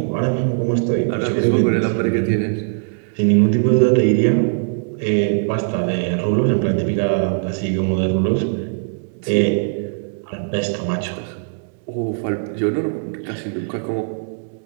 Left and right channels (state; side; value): silent; left; digital silence